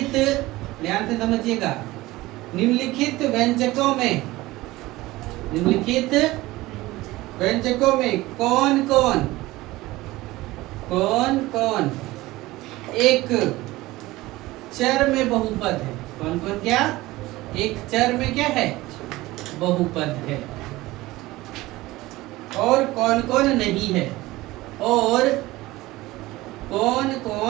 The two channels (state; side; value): quieter; left; 18.8 dB